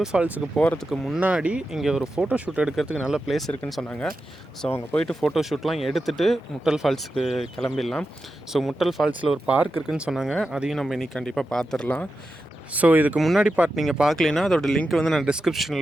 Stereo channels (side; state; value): both; normal; correlation 0.90